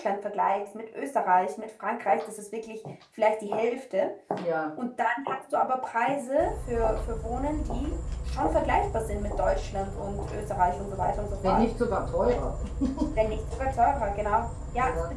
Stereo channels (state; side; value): identical; both; correlation 1.00